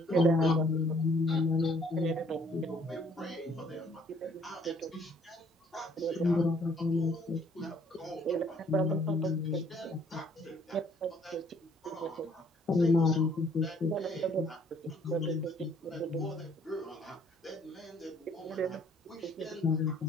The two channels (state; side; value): normal; both; correlation 0.62